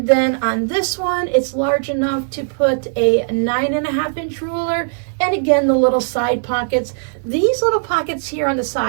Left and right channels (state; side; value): silent; left; 58 dB below the other